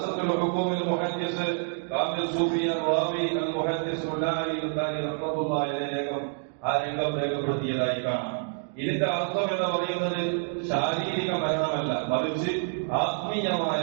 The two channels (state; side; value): silent; left; digital silence